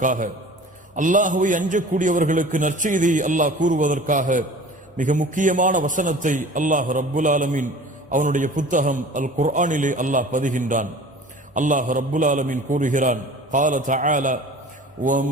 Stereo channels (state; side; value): normal; both; correlation 0.43